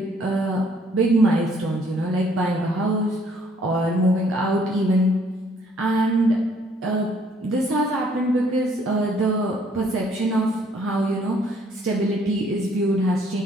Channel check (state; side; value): normal; both; correlation 0.64